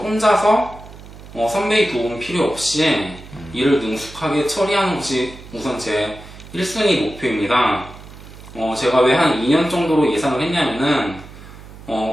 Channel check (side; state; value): right; noise; hum, 17 dB below the sound